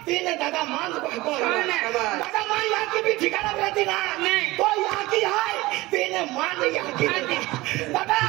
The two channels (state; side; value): quieter; left; 19.9 dB